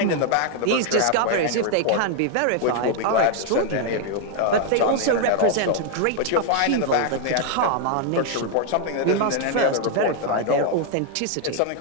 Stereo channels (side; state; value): both; different; correlation 0.00